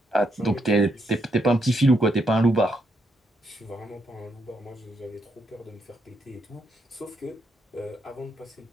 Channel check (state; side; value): normal; both; correlation 0.77